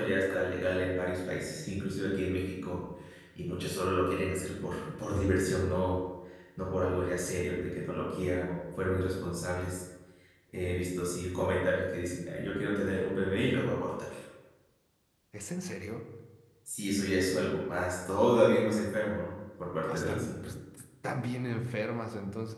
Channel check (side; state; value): both; identical; correlation 1.00